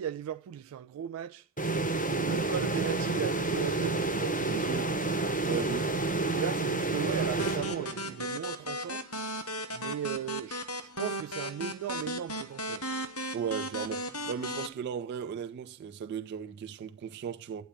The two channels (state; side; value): quieter; left; 3.4 dB